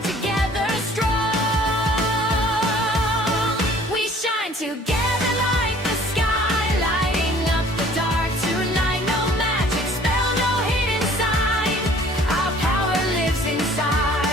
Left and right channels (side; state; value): both; normal; correlation 0.53